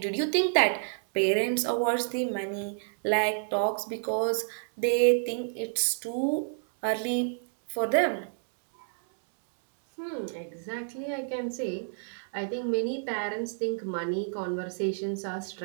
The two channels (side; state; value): left; silent; 58 dB below the other